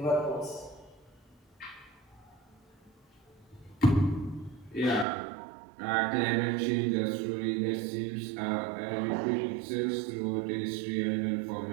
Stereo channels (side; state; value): left; drops out; at 5.1 s